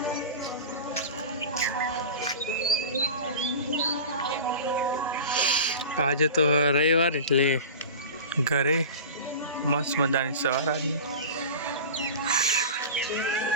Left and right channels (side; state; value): both; inverted; correlation -0.32